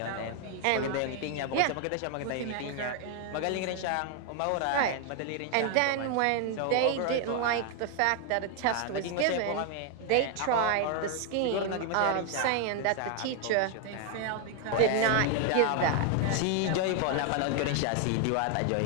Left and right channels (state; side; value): different; both; correlation 0.00